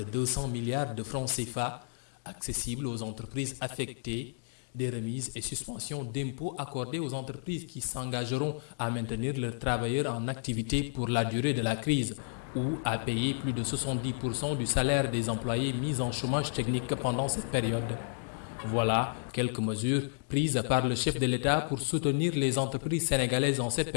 200 milliards de francs CFA accessible aux entreprises affectées, des remises et suspensions d'impôts accordées aux entreprises qui s'engageront à maintenir leurs travailleurs en activité pour la durée de la crise ou à payer plus de 70% du salaire des employés mis en chômage technique pendant cette période. Voilà quelques mesures prises par le chef de l'État pour soutenir les entreprises sénégalaises en cette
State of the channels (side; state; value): right; silent; digital silence